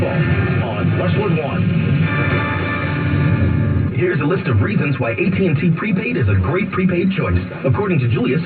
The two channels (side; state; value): both; identical; correlation 1.00